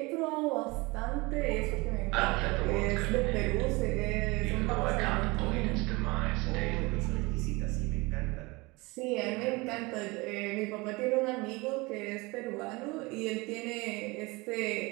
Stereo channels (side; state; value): left; quieter; 24.2 dB